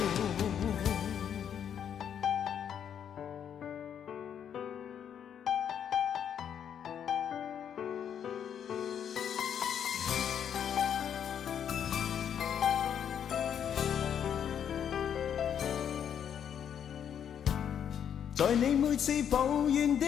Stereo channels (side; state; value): right; quieter; 8.7 dB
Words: 在你每次抱怨的